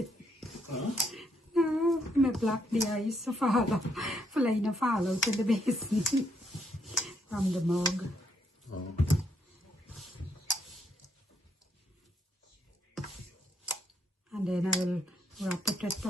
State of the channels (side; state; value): both; normal; correlation 0.74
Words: Huh? No, I block the ice to fall out. Fly na fall out in the basin from the mug. Oh. And then I will wrap it with